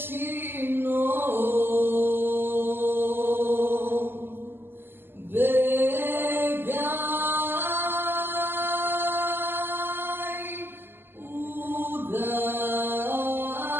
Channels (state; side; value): late; left; 0.10 ms